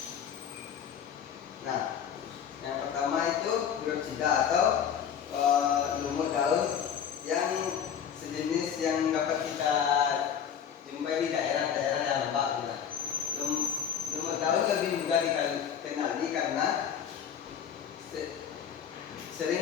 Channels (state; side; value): quieter; right; 8.2 dB